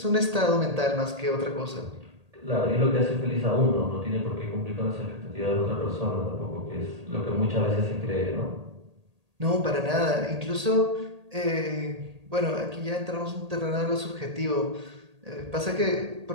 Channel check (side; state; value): left; late; 1.8 ms